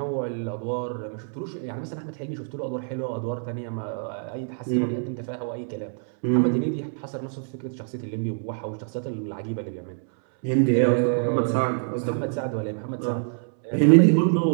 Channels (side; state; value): left; silent; 61 dB below the other